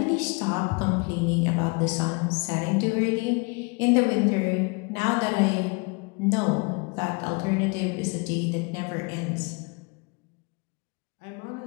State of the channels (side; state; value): right; quieter; 31.1 dB